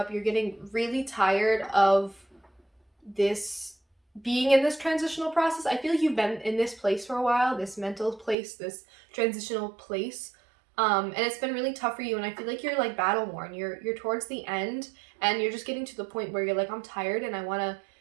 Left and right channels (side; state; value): left; drops out; at 8.3 s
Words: You're getting really tired of this being in this transitional process. I feel like you've been in this place for a while, this mental place, this transitional place, and it's been really tough for you, and I feel like you're like battle worn. You're towards the end, and you're just getting to the point where you're like, I'm tired and I want to